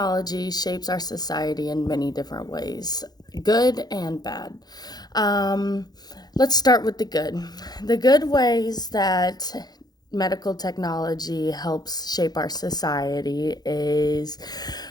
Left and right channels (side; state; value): right; late; 0.19 ms